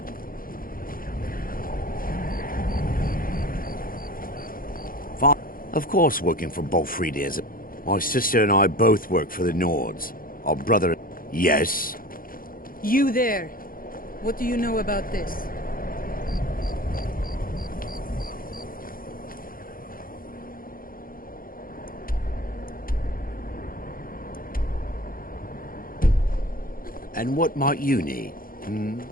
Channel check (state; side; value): late; right; 0.41 ms